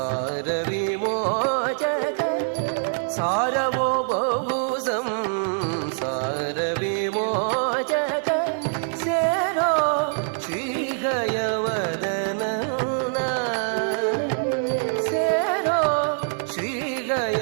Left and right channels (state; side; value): silent; left; 62 dB below the other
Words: ವಿಮೋಚಕ, ಸಾರವೋ ಬಹು ಸಂಸಾರ ವಿಮೋಚಕ. ಸೇರೋ ಶ್ರೀಗಯವದನ, ಸೇರೋ